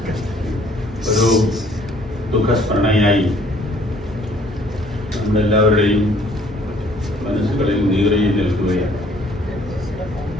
ഒരു ദുഃഖസ്മരണയായി നമ്മളെല്ലാവരുടെയും മനസ്സുകളിൽ നീറിയിൽ നിൽക്കുകയാണ്.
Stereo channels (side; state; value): both; normal; correlation 0.60